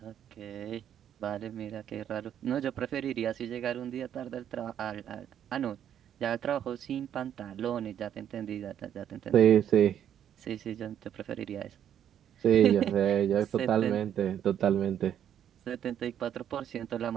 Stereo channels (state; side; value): quieter; left; 9.8 dB